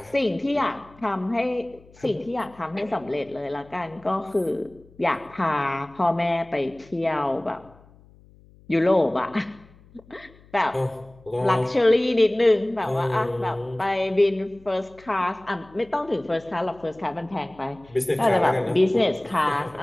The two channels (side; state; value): left; noise; hum, 26 dB below the sound